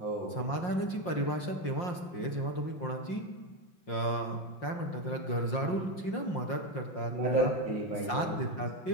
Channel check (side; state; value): right; late; 5.6 ms